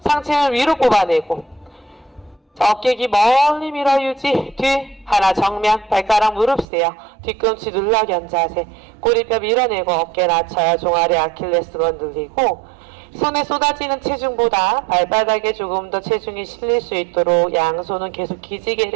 상체는 위로 뽑아내고. 자, 어깨 기 멀리 밀어 유지. 뒤 하나. 정면 발가락 무릎 세요. 뒤꿈치 눌러 견자세. 꼬리뼈 밀어내고 어깨 낮춰요. 종아리 아킬레스건 늘리고 손에 쏟아지는 체중보다 발바닥에 조금 더 체중이 실릴 수 있도록 양손은 계속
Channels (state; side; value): drops out; left; at 6.7 s